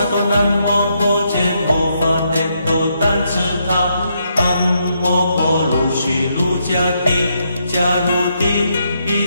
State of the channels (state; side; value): inverted; both; correlation -0.77